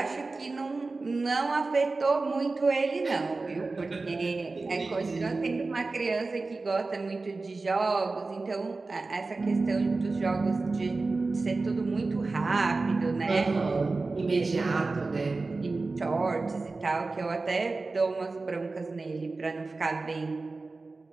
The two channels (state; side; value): quieter; left; 3.6 dB